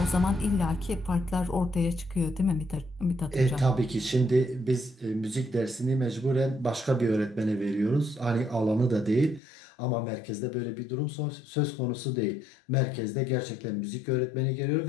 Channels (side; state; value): right; drops out; at 9.4 s